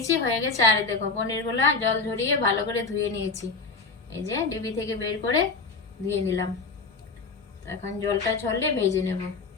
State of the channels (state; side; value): quieter; right; 4.2 dB